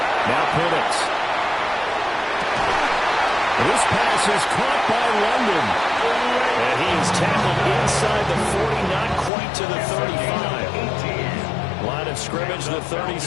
Now Penix. This pass is caught by London. And he is tackled inside the 40, not quite to the 35. Line of scrimmage, the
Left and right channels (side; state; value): right; drops out; at 9.3 s